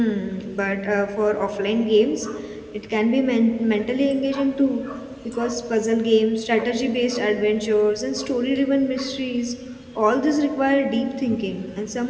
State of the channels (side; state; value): both; identical; correlation 1.00